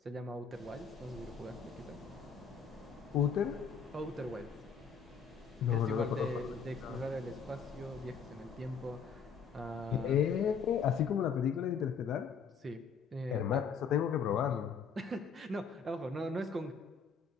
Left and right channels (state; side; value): quieter; right; 6.1 dB